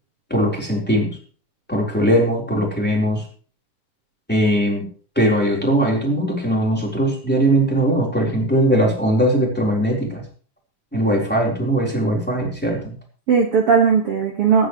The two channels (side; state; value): both; normal; correlation 0.22